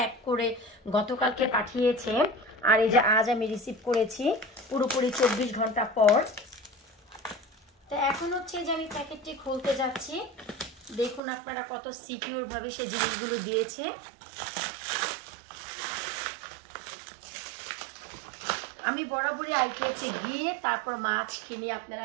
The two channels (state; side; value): drops out; left; at 11.2 s